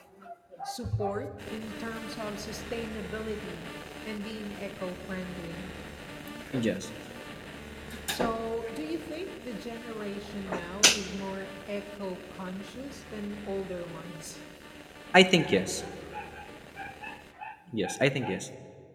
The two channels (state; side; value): identical; both; correlation 1.00